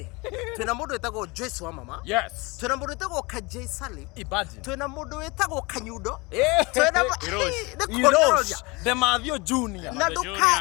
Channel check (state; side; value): quieter; right; 25.7 dB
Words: Twina mundu wetagwo Joyce wa mama. Yes. Twina mundu wetagwo Kajay Salim. Imagine. Twina mundu wetagwo Kanyundo. Twina Irosh. The Mathio Junior. Na